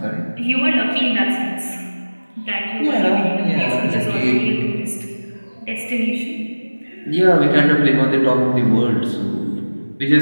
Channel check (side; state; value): both; inverted; correlation -1.00